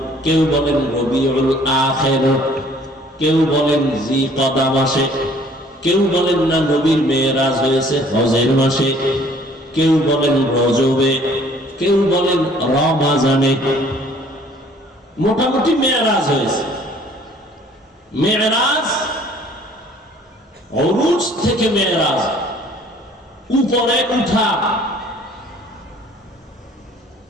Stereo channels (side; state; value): both; normal; correlation 0.56